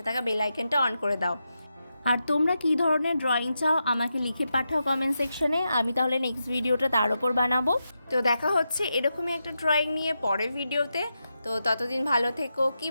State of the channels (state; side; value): inverted; both; correlation -0.87